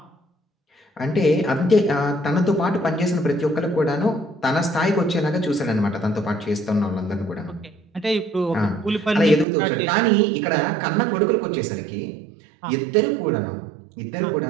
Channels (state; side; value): drops out; left; at 9.5 s